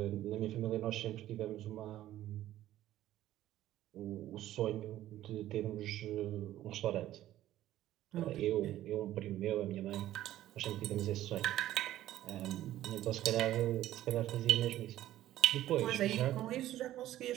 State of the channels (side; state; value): left; quieter; 13.7 dB